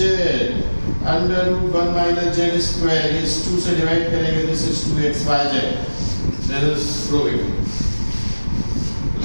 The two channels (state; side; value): inverted; both; correlation -1.00